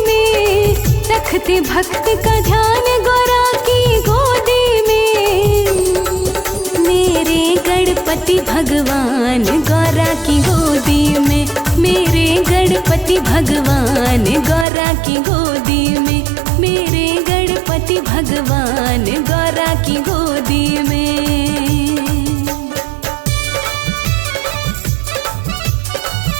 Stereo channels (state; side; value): drops out; left; at 14.7 s